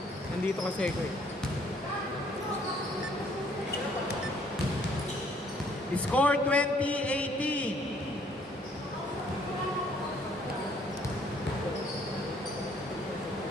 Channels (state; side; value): normal; both; correlation 0.63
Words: Nandito kasi ko eh. Score 20-18.